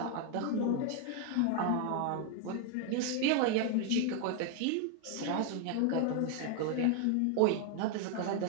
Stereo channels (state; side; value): different; both; correlation 0.01